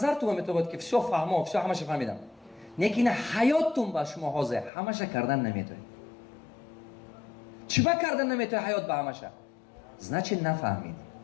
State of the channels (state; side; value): drops out; right; at 4.7 s